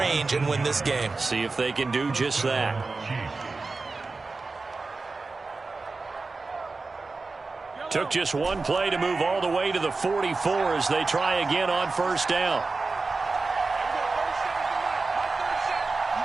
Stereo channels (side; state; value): left; quieter; 3.8 dB